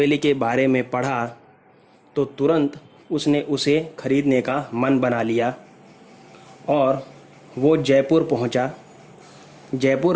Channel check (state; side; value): identical; both; correlation 1.00